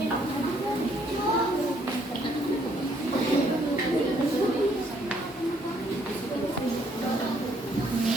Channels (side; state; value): both; normal; correlation 0.67